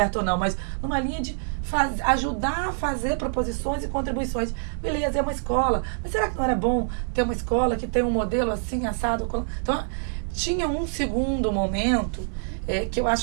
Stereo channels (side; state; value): left; silent; 61 dB below the other